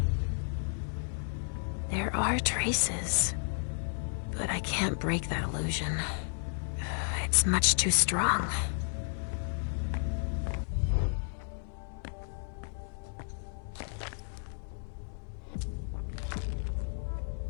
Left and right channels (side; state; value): right; silent; digital silence